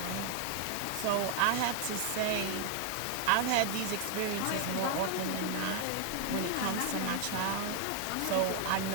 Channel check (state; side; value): different; both; correlation 0.00